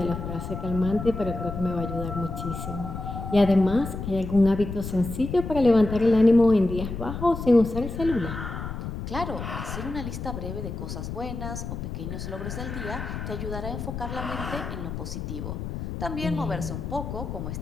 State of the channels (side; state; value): left; noise; rumble, 6 dB below the sound